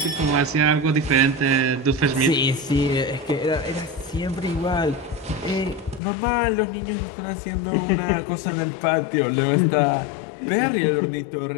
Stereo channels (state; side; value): drops out; right; at 6.0 s